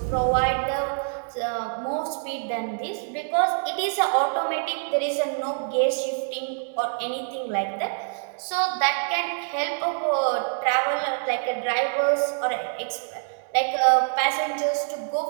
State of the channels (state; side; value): silent; left; digital silence